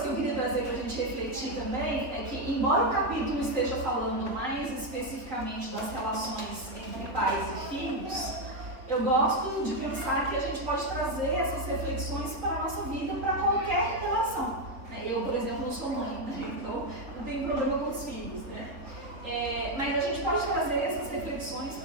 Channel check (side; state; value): left; late; 3.8 ms